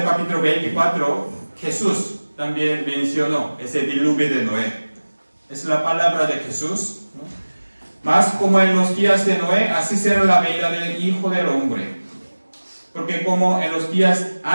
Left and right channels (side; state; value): both; inverted; correlation -1.00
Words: capítulo 24, Jesús también mencionó ese diluvio de Noé. Es la palabra de Jesús, ¿no? Mas como en los días de Noé, así será la venida del Hijo del Hombre. Porque como en los días